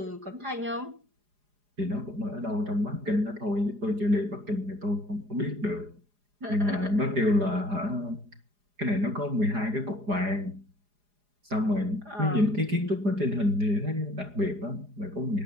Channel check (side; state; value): left; late; 4.9 ms